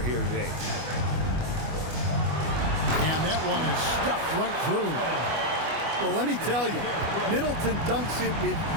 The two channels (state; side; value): late; left; 25 ms